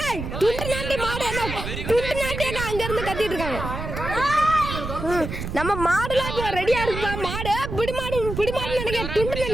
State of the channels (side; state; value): right; noise; rumble, 6 dB below the sound